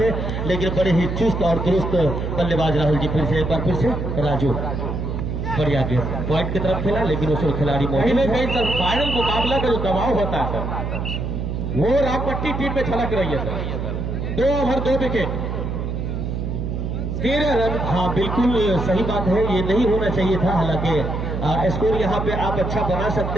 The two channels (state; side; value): noise; right; hum, 3 dB below the sound